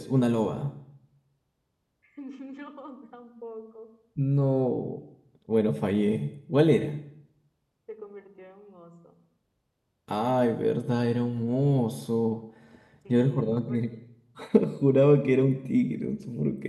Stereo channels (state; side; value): identical; both; correlation 1.00